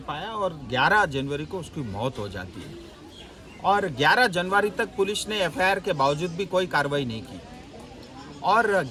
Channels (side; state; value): both; identical; correlation 1.00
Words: पाया और 11 जनवरी को उसकी मौत हो जाती है। और 11 जनवरी तक पुलिस ने एफआईआर के बावजूद भी कोई कार्रवाई नहीं की और